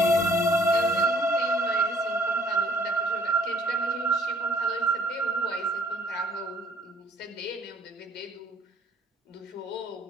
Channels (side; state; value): both; normal; correlation 0.59